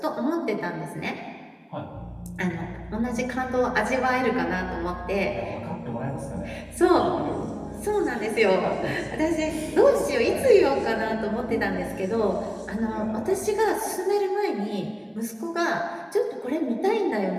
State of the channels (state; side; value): identical; both; correlation 1.00